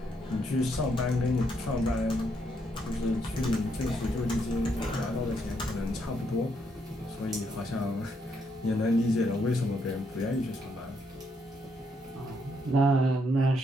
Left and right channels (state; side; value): normal; both; correlation 0.75